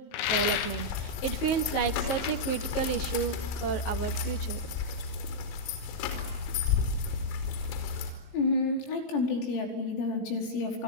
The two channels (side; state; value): right; late; 19 ms